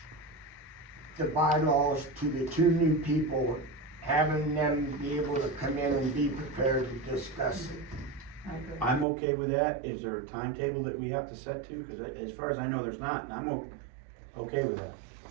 the bylaws to the 2 new people, having them be able to come in and be prepared to discuss it? I agree. I'm okay with that. Is there a timetable that we have to set to? Cause as far as I know, there's not, and I'm okay with that.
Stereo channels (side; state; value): left; drops out; at 9.1 s